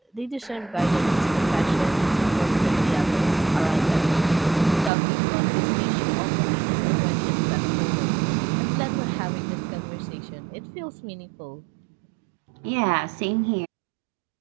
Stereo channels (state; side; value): drops out; left; at 4.9 s